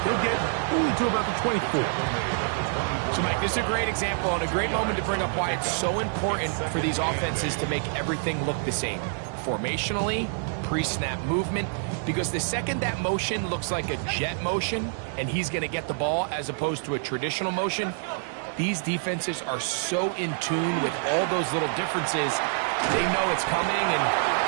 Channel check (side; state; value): left; silent; 60 dB below the other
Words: He'll get only to about the 24. So, Mike, this is a great example and a great moment to bring up why it's so important for these offenses to make everything look the same. Formationally, pre-snap movement, because the second that motion looks like a jet motion and he's going to get the ball as opposed to a traditional motion, these defenses are so in tune with all those little differences, they know it's coming and